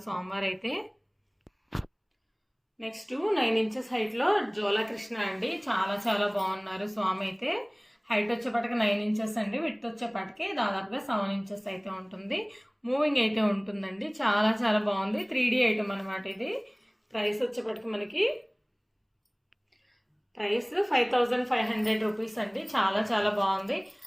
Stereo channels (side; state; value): both; identical; correlation 1.00